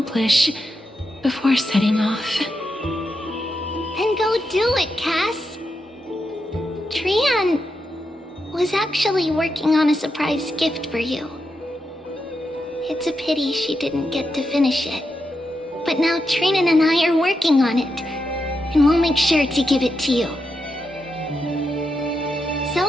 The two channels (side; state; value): both; normal; correlation 0.86